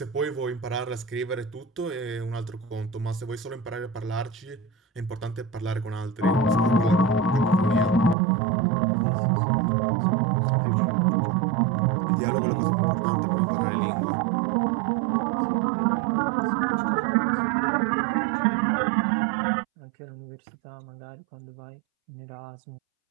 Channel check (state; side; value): drops out; left; at 8.2 s